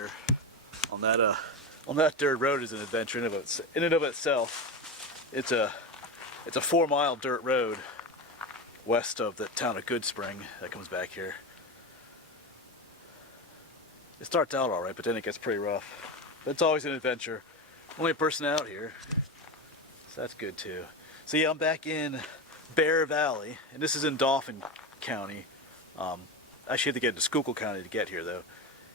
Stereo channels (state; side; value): normal; both; correlation 0.19